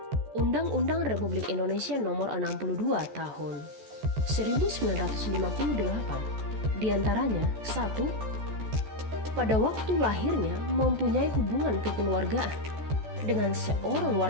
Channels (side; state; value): left; late; 14 ms